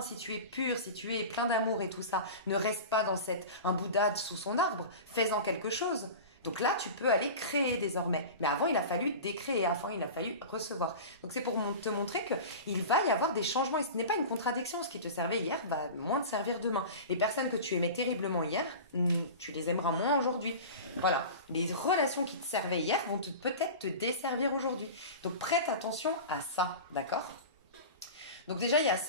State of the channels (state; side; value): inverted; both; correlation -0.32